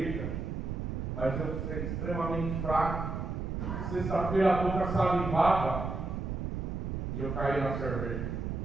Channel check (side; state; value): right; noise; rumble, 3 dB below the sound